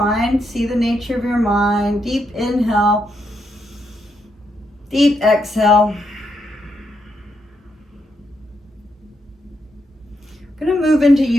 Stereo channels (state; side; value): normal; both; correlation 0.80